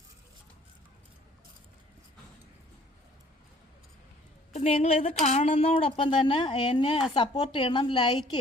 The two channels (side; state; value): both; normal; correlation 0.56